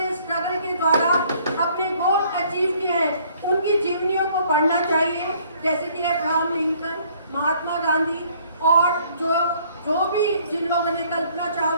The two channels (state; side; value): inverted; both; correlation -0.61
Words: स्ट्रगल के द्वारा अपने गोल अचीव किए हैं, उनकी जीवनियों को पढ़ना चाहिए। जैसे कि अब्राहम लिंकन, महात्मा गांधी और जो भी जिन लोगों ने, कल्पना